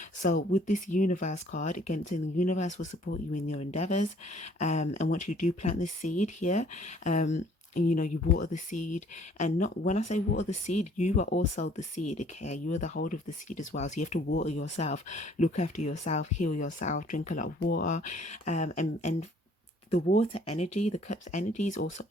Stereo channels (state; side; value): normal; both; correlation 0.58